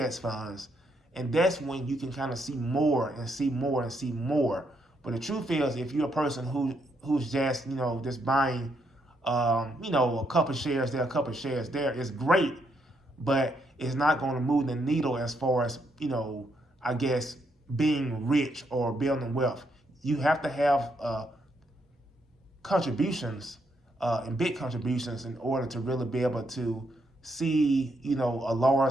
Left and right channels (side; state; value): both; normal; correlation 0.76